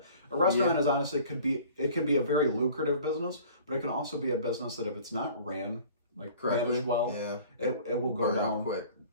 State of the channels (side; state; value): both; inverted; correlation -0.47